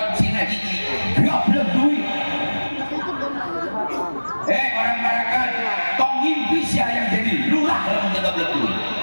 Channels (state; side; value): inverted; both; correlation -1.00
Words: hiji, goblok duit. Hei orang parakan, tong ngimpi sia yang jadi lurah lamun goblok duit.